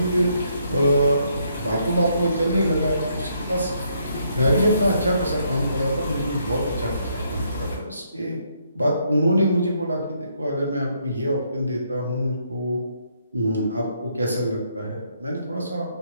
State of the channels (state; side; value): inverted; both; correlation -0.72